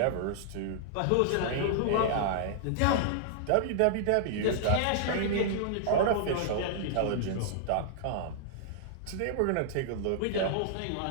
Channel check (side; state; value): both; different; correlation -0.01